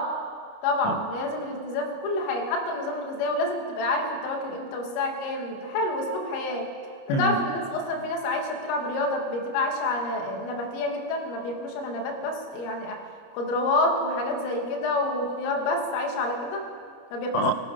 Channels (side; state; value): right; late; 29 ms